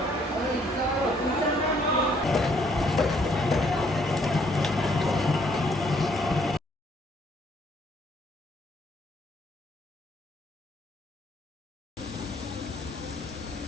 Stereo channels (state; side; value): normal; both; correlation 0.66